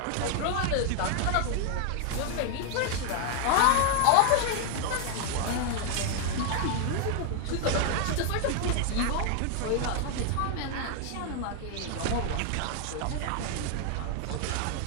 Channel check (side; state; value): both; different; correlation 0.00